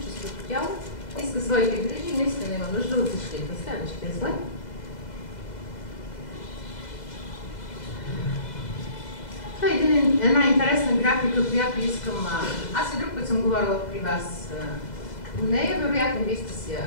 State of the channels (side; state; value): right; late; 2.0 ms